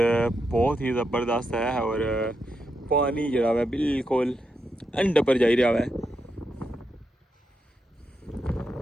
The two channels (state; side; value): normal; both; correlation 0.84